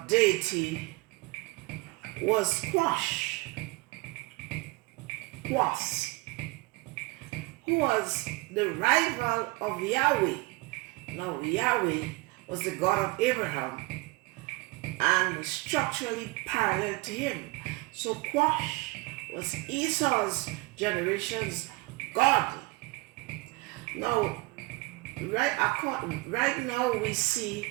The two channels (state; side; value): quieter; left; 23.4 dB